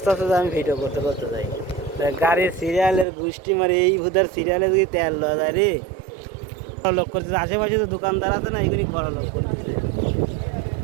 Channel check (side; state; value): left; drops out; at 3.1 s